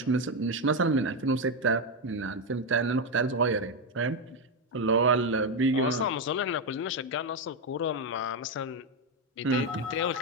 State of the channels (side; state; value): both; normal; correlation 0.07